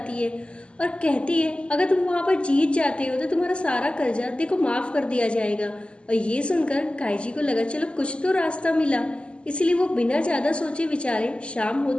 है और कहती है अगर तुम वहाँ पर जीत जाते हो तो तुम्हारा सारा कर्जा देखो माफ कर दिया जाएगा। और ये सुनकर काइची को लगा चलो कुछ तो रास्ता मिला, इसलिए वो बिना ज्यादा सोचे विचारे शाम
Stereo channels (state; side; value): late; right; 0.053 ms